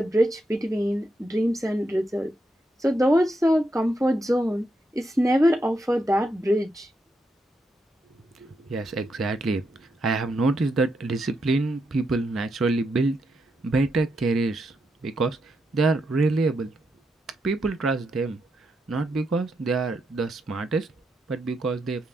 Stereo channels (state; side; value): normal; both; correlation 0.82